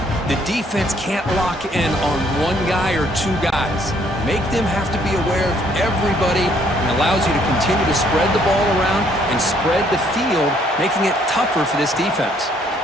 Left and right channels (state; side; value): normal; both; correlation 0.66